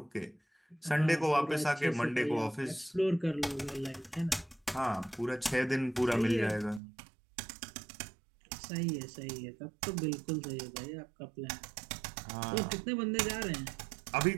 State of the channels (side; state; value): left; drops out; at 6.8 s